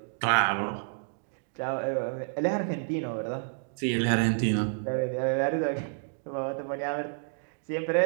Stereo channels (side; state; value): left; silent; digital silence